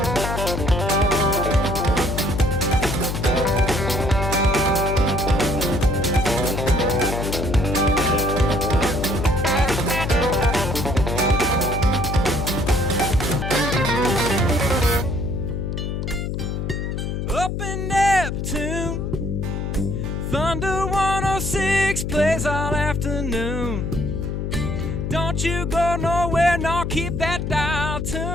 in Neptune, Thunder 106 plays all afternoon. Don't you go nowhere, no, keep that dial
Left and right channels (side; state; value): left; noise; hum, 3 dB below the sound